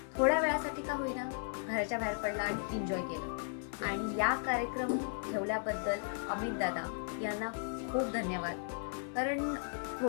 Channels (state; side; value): silent; right; digital silence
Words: थोड्या वेळासाठी का होईना घराच्या बाहेर पडला आणि एन्जॉय केलं. आणि या कार्यक्रम ठेवल्याबद्दल अमित दादा यांना खूप धन्यवाद. कारण